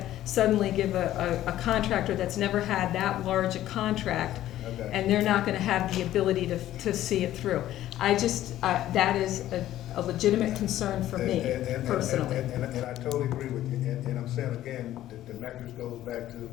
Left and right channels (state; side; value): quieter; right; 13.4 dB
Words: suddenly give a contractor that's never had that large a contract, and they're not gonna have the ability to see it through. That is a legitimate concern for me, personally. And I totally agree with you, and I'm saying again, the metrics goes back to